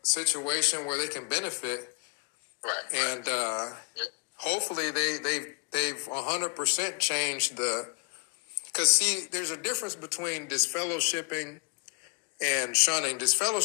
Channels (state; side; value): quieter; right; 34.9 dB